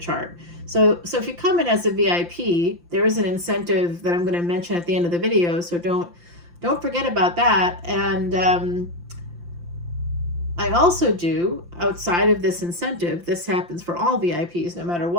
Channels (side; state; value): left; late; 5.8 ms